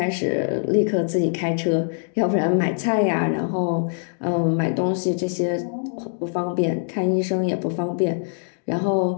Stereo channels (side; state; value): right; silent; digital silence